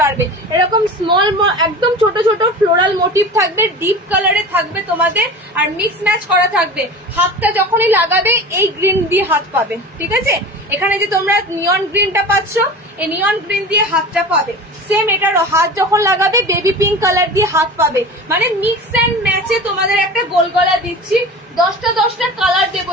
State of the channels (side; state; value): both; normal; correlation 0.34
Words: পারবে, এরকম স্মল একদম ছোট ছোট ফ্লোরাল মোটিভ থাকবে, ডিপ কালারে থাকবে তোমাদের, আর মিক্স ম্যাচ করা থাকবে। হাতটা যখনই লাগাবে এই গ্রিন দিয়ে হাত পাবে, ঠিক আছে, এখানে যে তোমরা নিয়ন গ্রিনটা পাচ্ছ, এই নিয়ন গ্রিন দিয়ে হাতটা পাবে, সেম এটারও হাত যখন লাগাবে বেবি পিঙ্ক কালার দিয়ে হাত পাবে, মানে মিক্স অ্যান্ড ম্যাচে তোমাদের একটা গোল গলা দিচ্ছি। 10টা কালার দেবো,